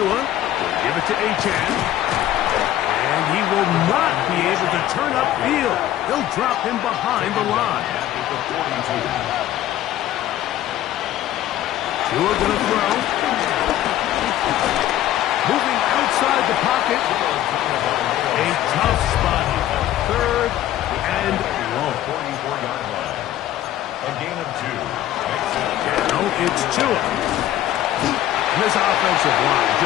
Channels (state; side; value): quieter; right; 13.1 dB